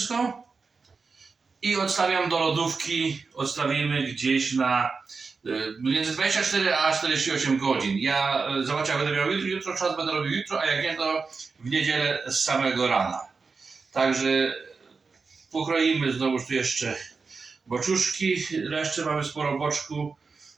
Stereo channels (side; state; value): left; quieter; 4.6 dB